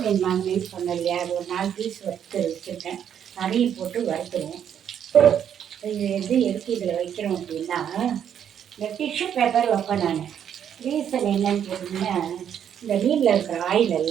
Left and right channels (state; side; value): quieter; left; 9.0 dB